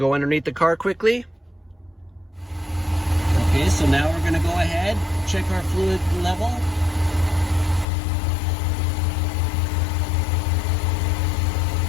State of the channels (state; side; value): drops out; right; at 7.9 s